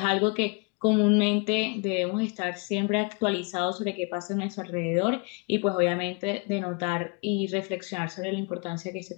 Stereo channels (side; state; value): right; quieter; 32.6 dB